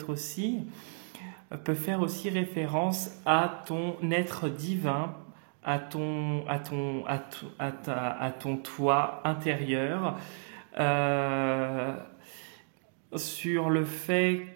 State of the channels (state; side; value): silent; left; 56 dB below the other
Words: faire aussi référence à ton être divin, à ton toi intérieur, sur le fait